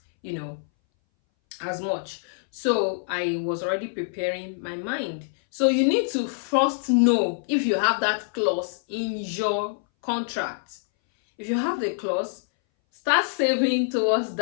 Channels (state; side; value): silent; right; 60 dB below the other